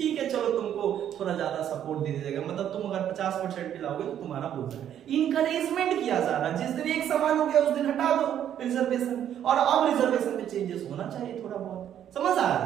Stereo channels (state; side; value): quieter; left; 10.2 dB